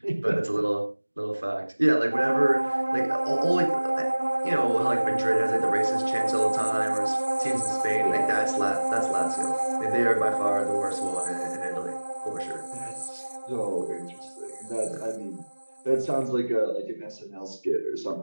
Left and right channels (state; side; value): inverted; both; correlation -1.00